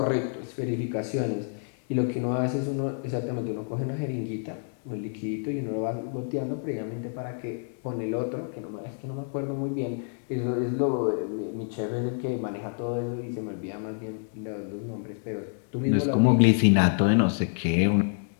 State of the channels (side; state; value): right; silent; 59 dB below the other